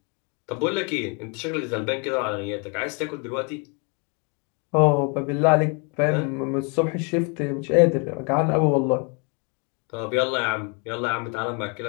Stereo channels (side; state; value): right; quieter; 35.0 dB